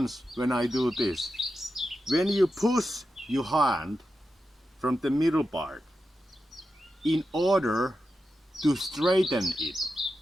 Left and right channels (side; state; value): both; normal; correlation 0.90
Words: when I do this. When you push your hand from the middle part in order to straighten it